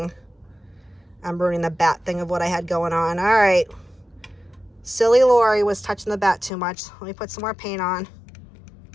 the bat thing of what I had going on. All right. Silly Lori was touching the bat too much. Let me put some more paint on.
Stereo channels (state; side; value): drops out; right; at 6.5 s